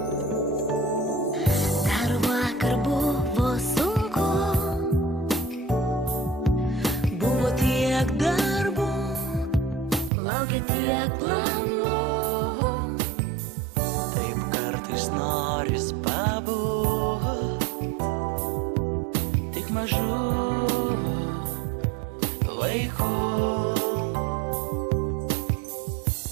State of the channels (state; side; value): drops out; left; at 10.1 s